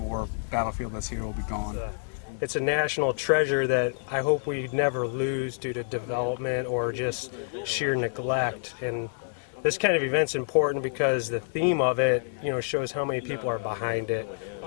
War battlefield that's here will be gone. It's a national treasure that I hope we never lose due to development or just sheer neglect. And this kind of event's important because the theme of it, shows how many people are behind it.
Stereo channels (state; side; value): silent; right; 60 dB below the other